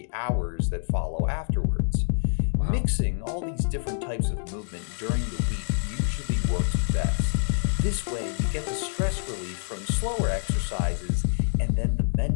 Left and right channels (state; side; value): silent; right; digital silence